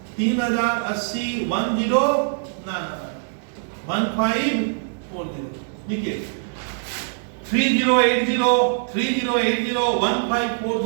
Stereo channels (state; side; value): silent; left; digital silence